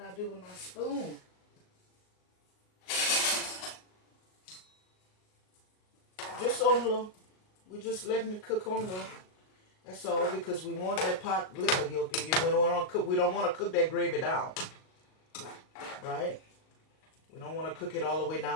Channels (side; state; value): right; late; 38 ms